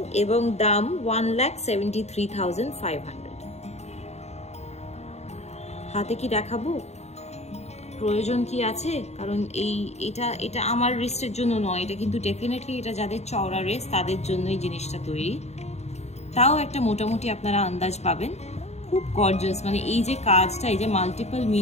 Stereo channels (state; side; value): late; right; 0.32 ms